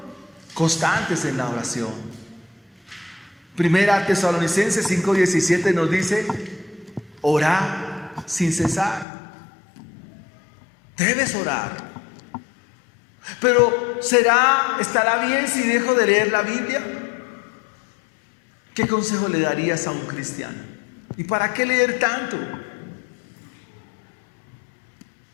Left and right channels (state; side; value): drops out; right; at 9.1 s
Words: constantes en la oración. Primera Tesalonicenses 5:17 nos dice: orad sin cesar. Debes orar. Pero ¿estará bien si dejo de leer la Biblia? ¿Qué consejo le darías a un cristiano? ¿Y para qué leer tanto?